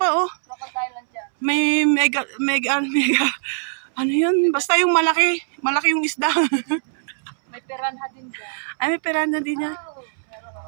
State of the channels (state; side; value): silent; left; 64 dB below the other